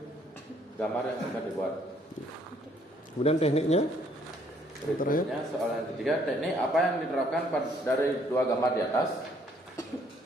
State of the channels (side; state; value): both; normal; correlation 0.65